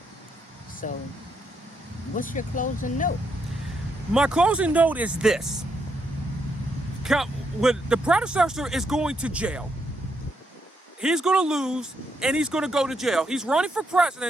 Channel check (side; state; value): both; normal; correlation 0.78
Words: So, what's your closing note? My closing note is this. When the predecessor is going to jail, he's going to lose and he's going to go to jail. He's running for